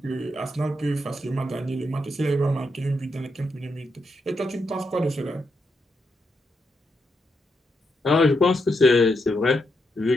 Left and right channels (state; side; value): normal; both; correlation 0.82